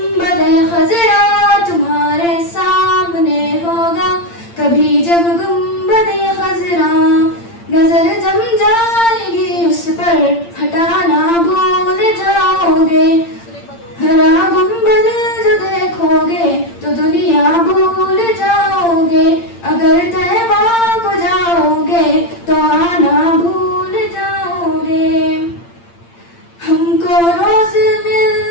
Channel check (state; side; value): late; right; 8.8 ms